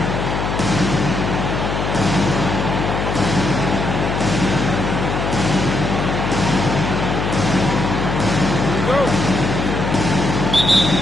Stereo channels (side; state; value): left; noise; hum, 2 dB below the sound